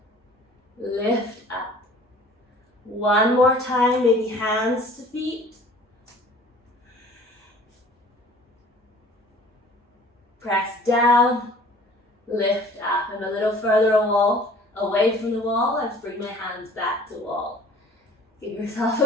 lift up. One more time, maybe hands to feet. Press down, lift up. And a little further away from the wall, let's bring my hands back to wall. Give yourself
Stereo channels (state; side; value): normal; both; correlation 0.49